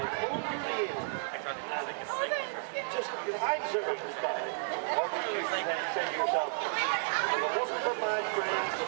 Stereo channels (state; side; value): silent; left; digital silence